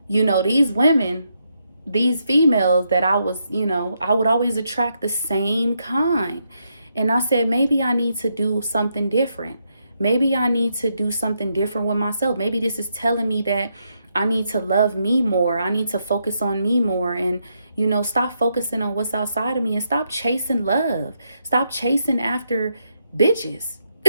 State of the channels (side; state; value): both; inverted; correlation -0.80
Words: these women, these females that I would always attract the same kind. And I said, maybe I need to do something different. Maybe I need to do something different with myself. Maybe this is telling me that I need to love me more. I need to focus on me more and, stop focusing on what's outside of me and stop chasing love. Stop chasing after bitches.